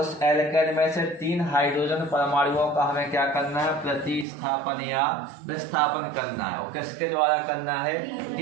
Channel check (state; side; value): drops out; left; at 4.2 s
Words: एल्केन में से 3 हाइड्रोजन परमाणुओं का हमें क्या करना है? प्रतिस्थापन या विस्थापन करना है। और किसके द्वारा करना है?